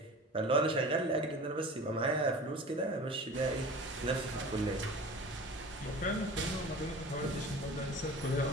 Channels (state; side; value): normal; both; correlation 0.38